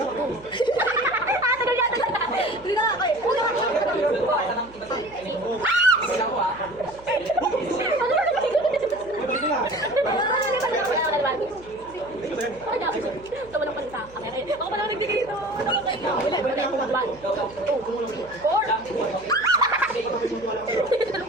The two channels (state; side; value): noise; right; hum, 23 dB below the sound